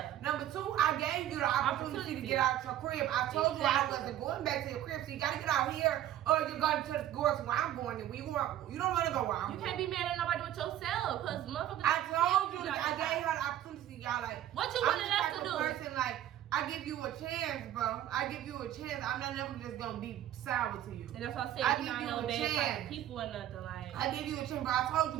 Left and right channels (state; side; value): quieter; left; 12.2 dB